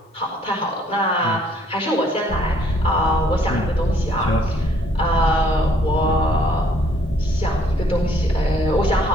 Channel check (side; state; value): both; normal; correlation 0.64